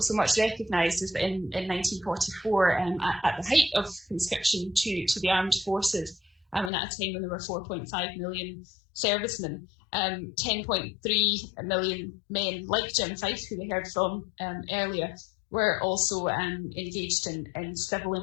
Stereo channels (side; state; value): right; drops out; at 6.7 s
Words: much recognised is that in 1944, at the height of conscription to the armed forces, and at a time when there were 4.5 million servicemen, 10.3 million men, like Jim Fife, who we heard from earlier, were also engaged in civil